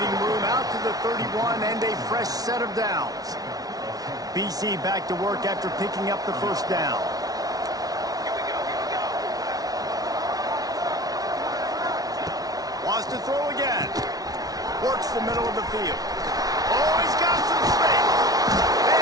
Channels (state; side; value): late; left; 0.18 ms